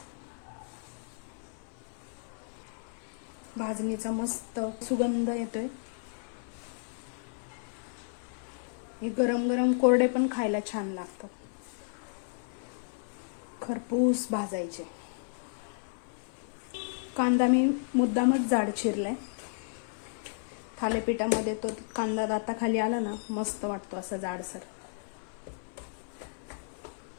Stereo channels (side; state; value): right; silent; 56 dB below the other